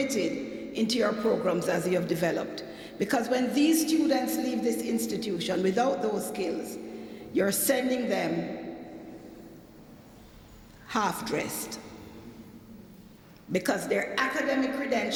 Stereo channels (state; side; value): identical; both; correlation 1.00